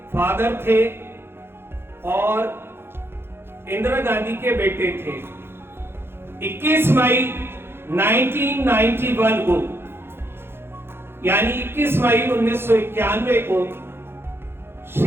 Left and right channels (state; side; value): late; left; 0.11 ms